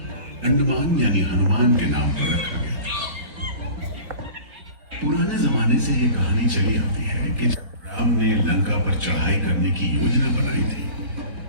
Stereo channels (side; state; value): left; late; 3.9 ms